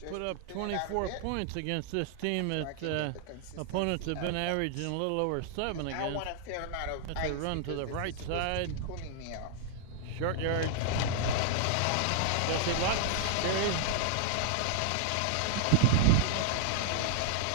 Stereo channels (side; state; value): both; different; correlation -0.01